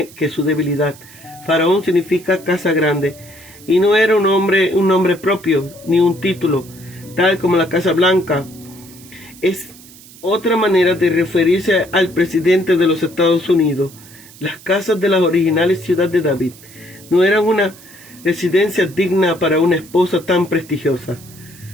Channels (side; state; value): right; noise; hiss, 21 dB below the sound